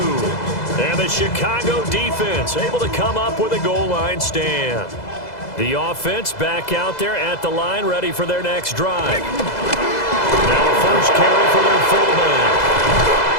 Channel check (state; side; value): late; right; 2.0 ms